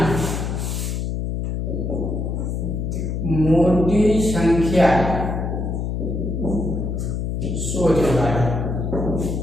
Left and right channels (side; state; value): left; noise; hum, 2 dB below the sound